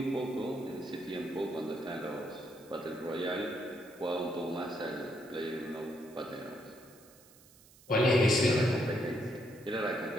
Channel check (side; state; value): right; noise; hiss, 25 dB below the sound